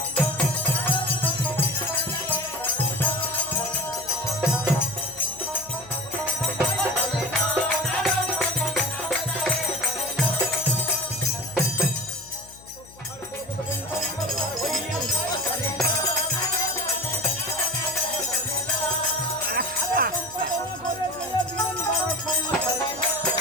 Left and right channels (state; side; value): noise; left; hum, 23 dB below the sound